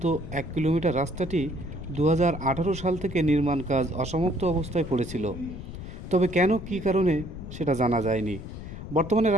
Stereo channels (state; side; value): noise; left; rumble, 10 dB below the sound